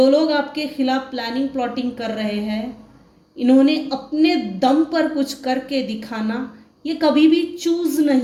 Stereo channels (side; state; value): both; identical; correlation 1.00